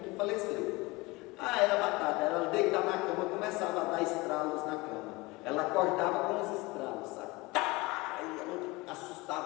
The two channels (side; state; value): right; quieter; 23.1 dB